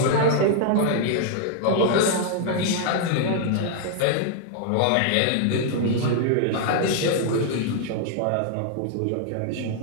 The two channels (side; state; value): both; different; correlation 0.00